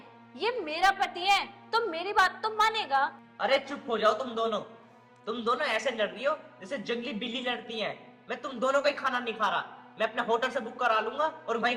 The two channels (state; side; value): identical; both; correlation 1.00